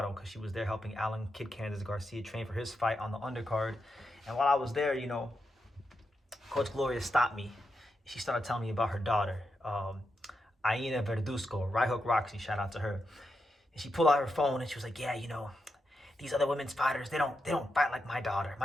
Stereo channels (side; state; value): both; normal; correlation 0.85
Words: because she was there helping Alan Kid Candace Garcia train for his fight on the undercard. And while I was there, Coach Gloria stopped me. She started telling me about her daughter, Iyana Verduzco, Right Hook Roxy, shout out to her. And she pulled out her phone and she was like, yeah, these other women's fighters, they don't fight like my daughter.